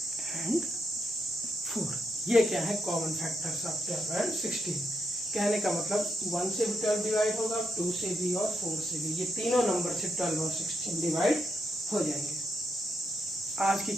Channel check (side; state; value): both; normal; correlation 0.80